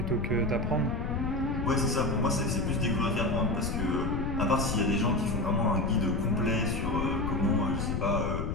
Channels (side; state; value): left; noise; rumble, 2 dB below the sound